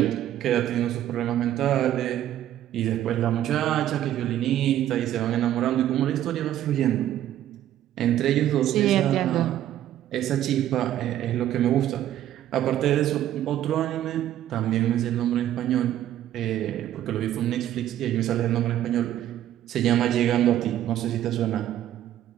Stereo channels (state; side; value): quieter; left; 12.2 dB